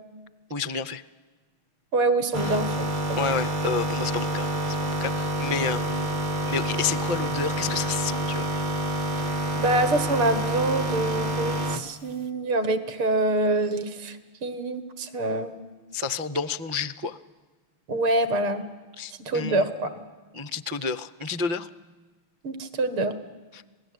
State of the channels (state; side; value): late; left; 6.3 ms